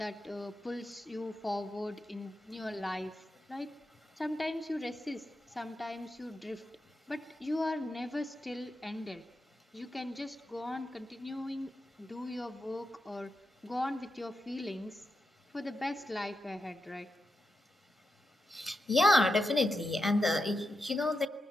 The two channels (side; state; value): both; normal; correlation 0.87